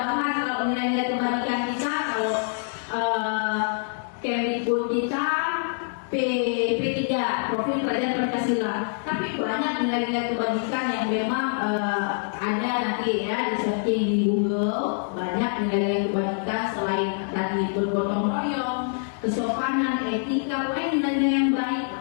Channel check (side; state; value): right; silent; digital silence